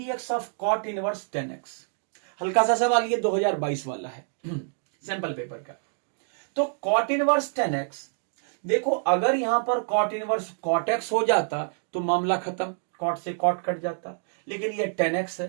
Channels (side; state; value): left; silent; digital silence